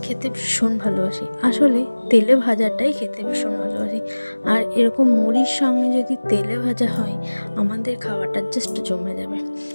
খেতে ভীষণ ভালোবাসি। আসলে তেলে ভাজাটাই খেতে ভীষণ ভালোবাসি। আর এরকম মুড়ির সঙ্গে যদি তেলে ভাজা হয়, আমাদের খাওয়াটা জাস্ট জমে যাবে।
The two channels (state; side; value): inverted; both; correlation -1.00